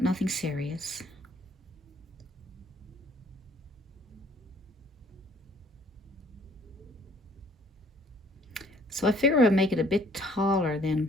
nothing serious. So I figure I'll make it a bit taller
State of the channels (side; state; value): both; normal; correlation 0.59